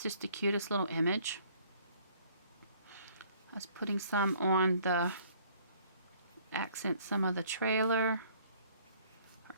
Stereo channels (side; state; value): both; inverted; correlation -0.59